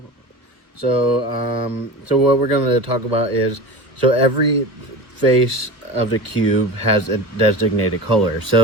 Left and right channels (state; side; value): late; left; 1.6 ms